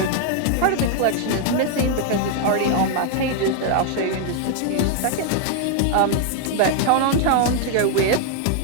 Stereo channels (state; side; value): different; both; correlation 0.00